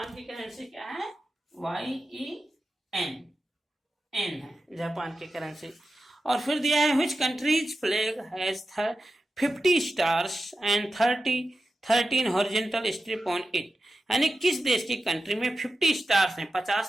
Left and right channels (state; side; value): normal; both; correlation 0.91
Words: की करेंसी क्या है, YEN, एन है जापान की करेंसी। और फिर दिया है which countries flag has 50 stars and 13 horizontal strip on it, यानी किस देश की कंट्री में 50 स्टार्स हैं, 50